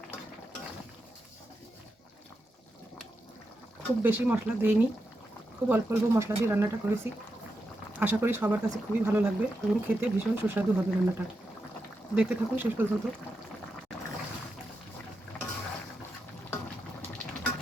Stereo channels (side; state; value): both; normal; correlation 0.87